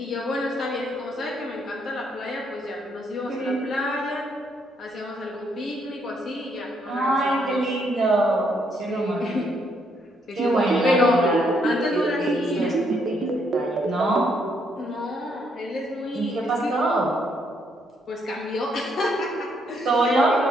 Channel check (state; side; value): normal; both; correlation 0.73